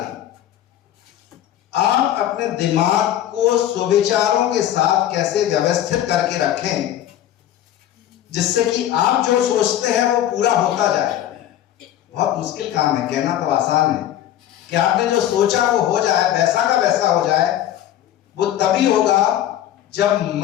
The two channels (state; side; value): quieter; right; 11.9 dB